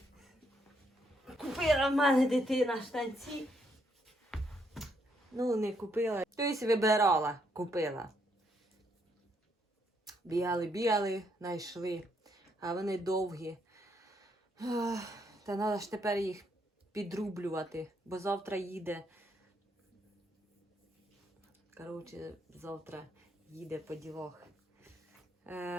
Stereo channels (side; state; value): both; normal; correlation 0.74